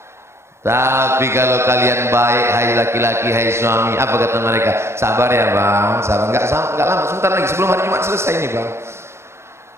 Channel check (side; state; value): left; late; 0.13 ms